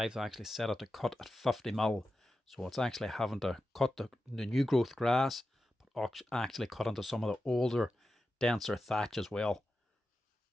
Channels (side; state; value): both; normal; correlation 0.91